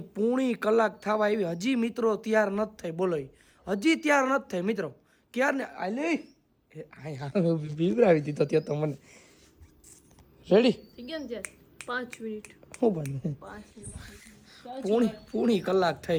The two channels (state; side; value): identical; both; correlation 1.00